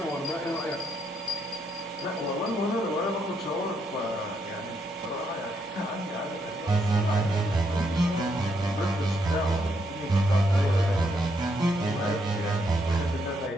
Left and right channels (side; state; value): both; normal; correlation 0.76